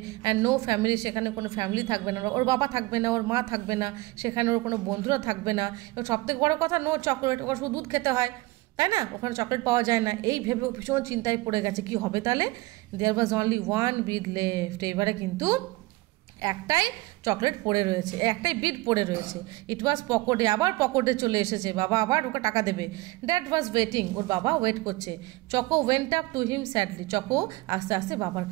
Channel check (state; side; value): quieter; left; 21.3 dB